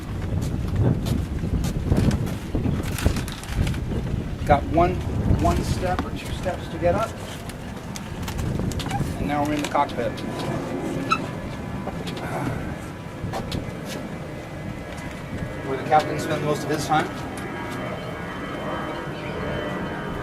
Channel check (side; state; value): both; identical; correlation 1.00